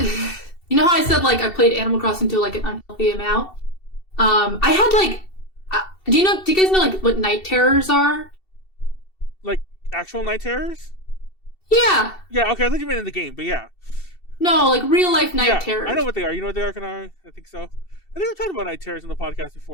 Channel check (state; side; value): late; right; 2.7 ms